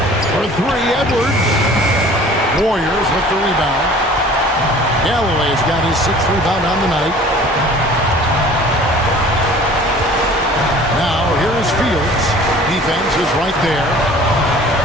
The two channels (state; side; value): normal; both; correlation 0.47